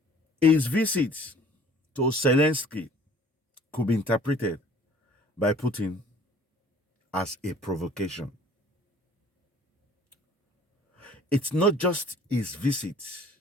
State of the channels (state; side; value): normal; both; correlation 0.52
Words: his visit to Zelensky could be interpreted by Putin as a provocation. It's not just his visit,